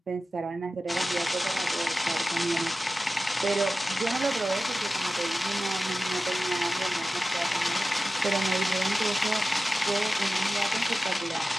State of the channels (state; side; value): normal; both; correlation 0.95